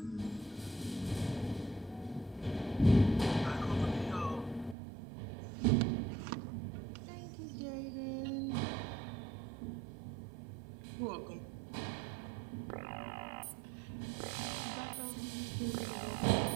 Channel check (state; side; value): drops out; left; at 4.8 s